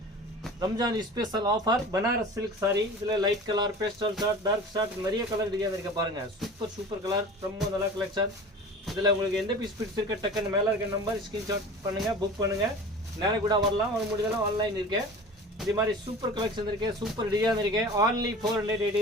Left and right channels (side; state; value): both; normal; correlation 0.38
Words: Ramzan special offer Banaras silk sari. இதுல light colour, pastel shade, dark shade, நிறைய கலர் டிசைன் இருக்கு பாருங்க. சூப்பர் கலர், ரொம்ப நல்ல கலெக்ஷன். இதுல உங்களுக்கு எந்த பீஸ் பிடிச்சிருக்க டக்குன்னு மேல இருக்க நம்பர் ஸ்கிரீன்ஷாட் பண்ணுங்க, புக் பண்ணுங்க. நேர கூட வரலாம், வர முடியலாம், ஆன்லைன் இருக்கு. இது மாதிரி சூப்பர் கலெக்ஷன் இருக்கு, சூப்பர் டிசைன் இருக்கு. only